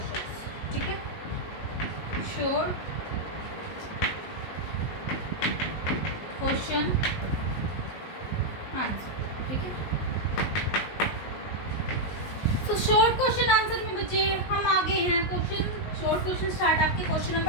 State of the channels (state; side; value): late; right; 19 ms